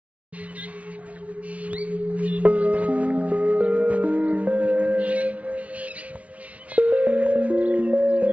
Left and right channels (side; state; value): left; late; 0.066 ms